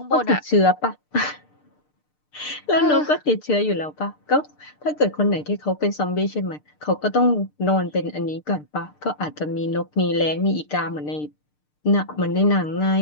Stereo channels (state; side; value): late; right; 6.7 ms